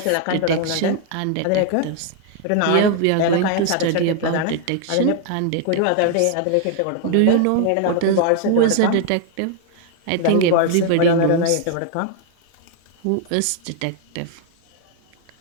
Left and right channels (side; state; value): both; different; correlation 0.00